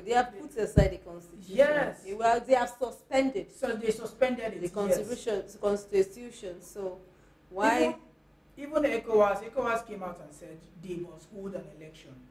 They have put aside the constitution. Yes. They have suspended so they suspended it. the yes. constitution. So why? Even ECOWAS came out and said they must hold an election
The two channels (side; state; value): both; identical; correlation 1.00